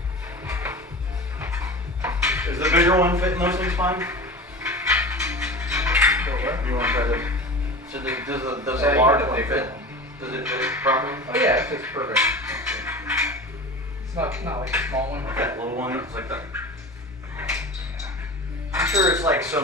Is the bigger one fitting those things fine? Go where? You want to try this? So does Yeah, the you large need a one bigger fit? one. Does it fit properly? Oh yeah, it fits perfect. It's not like a small one. Like that little one, it's like that. I'm sure it's like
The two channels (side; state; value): both; normal; correlation 0.33